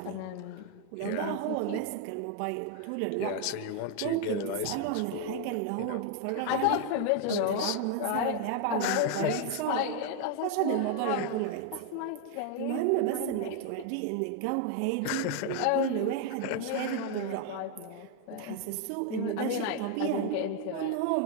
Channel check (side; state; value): both; different; correlation 0.00